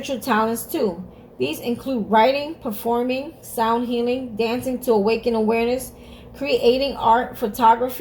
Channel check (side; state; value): both; identical; correlation 1.00